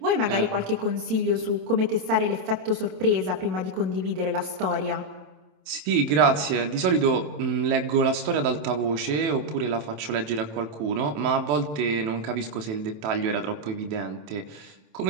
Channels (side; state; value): left; late; 27 ms